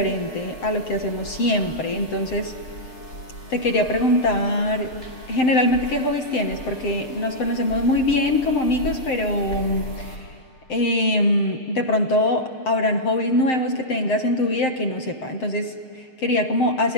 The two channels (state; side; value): late; right; 6.7 ms